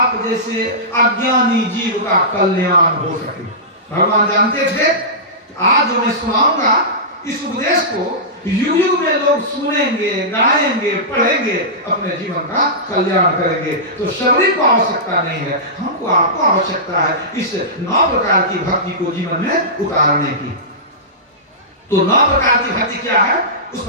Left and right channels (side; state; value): both; normal; correlation -0.18